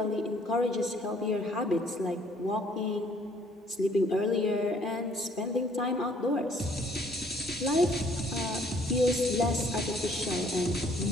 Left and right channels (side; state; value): both; normal; correlation 0.61